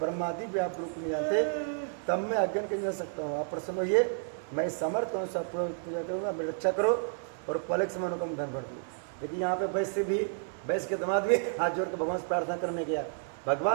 भी आप रूप नहीं जानते, तब मैं अज्ञान कर सकता हूँ। आप प्रसन्न होइए, मैं समर्थ करूँ, सब पूजा करूँगा, मेरी रक्षा करो और पलक से मनोकाम धन भर दूँ। लेकिन यहाँ पे वैश्य के दामाद भी हाथ जोड़ के भगवान से प्रार्थना करने गया,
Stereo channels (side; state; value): left; silent; 56 dB below the other